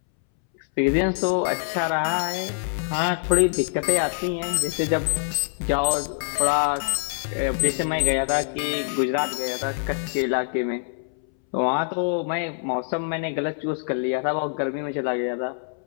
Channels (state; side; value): silent; right; 62 dB below the other